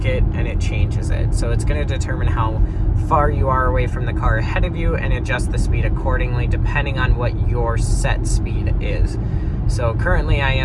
it and it changes it. So it's going to determine how far you are away from the car ahead of you and adjust the speed accordingly depending on what your set speed is. So currently I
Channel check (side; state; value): both; identical; correlation 1.00